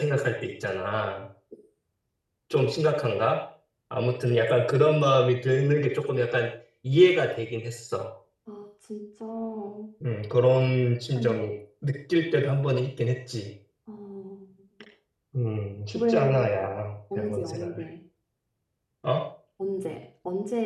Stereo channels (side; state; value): both; identical; correlation 1.00